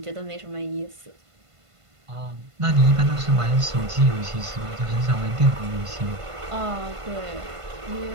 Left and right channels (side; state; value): left; late; 1.5 ms